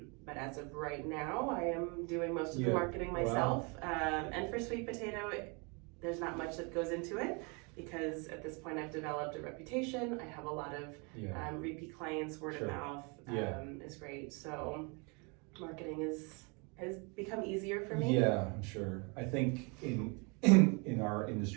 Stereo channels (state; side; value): quieter; left; 32.1 dB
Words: But as of right now, I am doing most of the marketing myself. Wow. And for Sweet Potato, there's not much that goes into it, because at this point I've developed a reputation. I have a lot of repeat clients. Word of mouth is great. So marketing has become easier for me. Yeah, I'm sure. I think in our